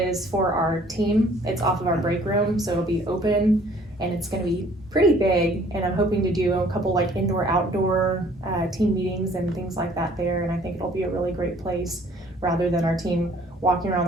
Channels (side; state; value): both; normal; correlation 0.57